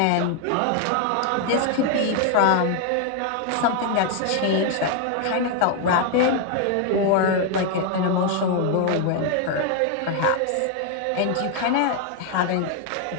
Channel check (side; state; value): both; different; correlation 0.00